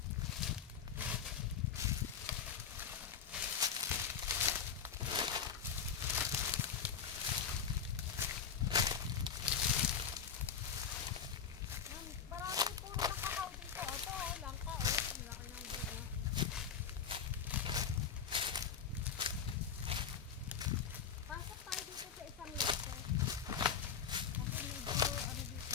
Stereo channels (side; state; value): right; quieter; 7.2 dB